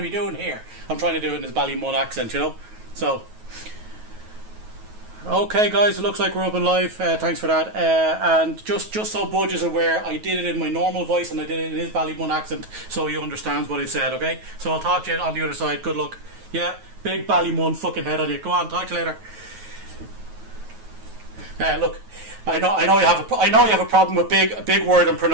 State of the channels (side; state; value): left; late; 9.3 ms